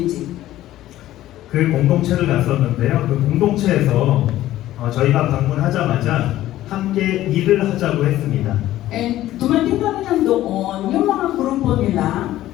그 공동체를 갔었는데요. 그 공동체에서 저희가 방문하자마자 함께 일을 하자고 했습니다. And dumating kami ng doon, yung mga grupo nila,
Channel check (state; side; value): quieter; right; 14.3 dB